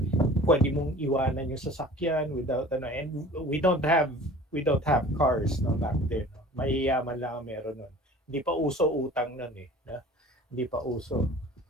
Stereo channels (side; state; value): both; normal; correlation 0.44